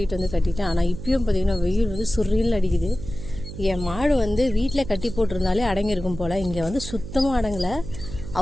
வந்து கட்டிட்டேன். ஆனால் இப்பயும் பார்த்தீங்கன்னா வெயில் வந்து சுரில் அடிக்குது. என் மாடு வந்து வீட்டில் கட்டி போட்டிருந்தாலே அடங்கியிருக்கும் போல். இங்கே வந்து சுத்தமாக அடங்கலை,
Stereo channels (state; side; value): noise; right; hum, 11 dB below the sound